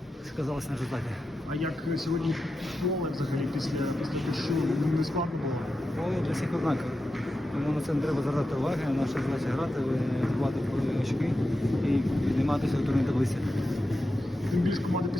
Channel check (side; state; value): both; normal; correlation 0.90